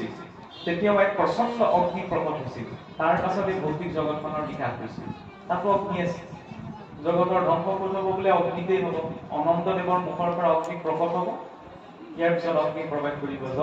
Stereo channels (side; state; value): both; identical; correlation 1.00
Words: তেতিয়াও এক প্ৰচণ্ড অগ্নি প্ৰকট হৈছিল। তাৰ পাছত এই ভৌতিক জগতখনৰ বিকাশ হৈছিল। তাতো অগ্নি আছে। জগতৰ ধ্বংস কৰিব বোলে অগ্নিতেই হ'ব। অনন্তদেৱৰ মুখৰ পৰা অগ্নি প্ৰকট হ'ব। ইয়াৰ পিছত অগ্নি প্ৰৱেশ কৰিব